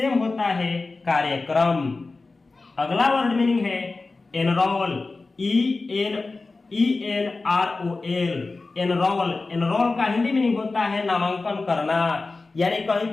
होता है कार्यक्रम। अगला वर्ड मीनिंग है एनरोल, ENROL, एनरोल। एनरोल का हिंदी मीनिंग होता है नामांकन करना, यानी कहीं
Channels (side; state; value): right; quieter; 3.6 dB